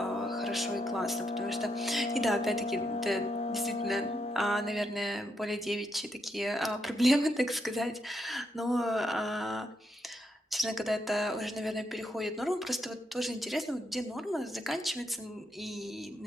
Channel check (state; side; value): normal; both; correlation 0.79